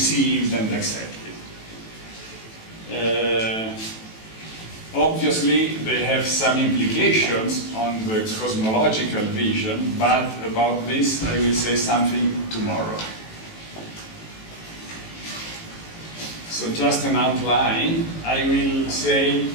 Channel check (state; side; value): late; right; 18 ms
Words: and accepted. Obviously, they have some implications on the cosmological vision, but about this I will say something tomorrow. So just an outline, I will say,